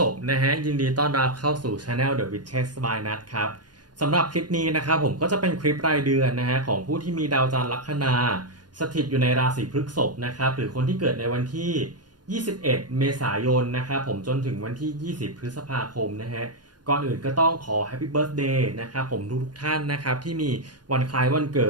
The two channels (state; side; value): late; left; 0.70 ms